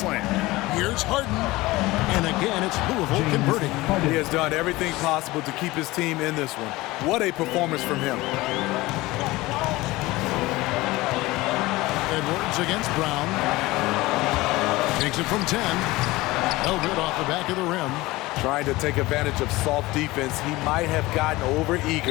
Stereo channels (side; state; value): right; quieter; 19.9 dB